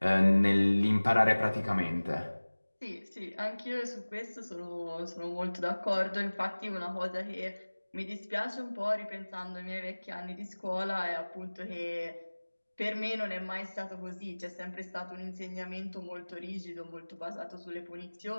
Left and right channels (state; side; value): inverted; both; correlation -1.00